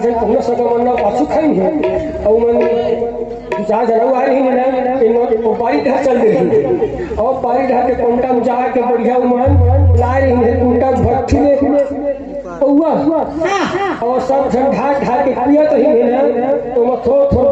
जन पुनः सगमन पाछू खाएंगे और मन दो चार जन आ रही है इन पारी ढा चल रही और पारी ढा के कोंटा में जा के बढ़िया मन ला रही है कोंटा भट्टी में हुआ और सब जन ढा के पिया तो ही है तो मैं थोड़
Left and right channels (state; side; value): identical; both; correlation 1.00